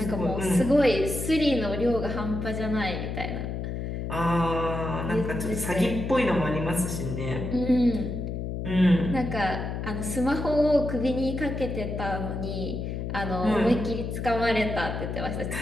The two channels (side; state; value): left; noise; hum, 4 dB below the sound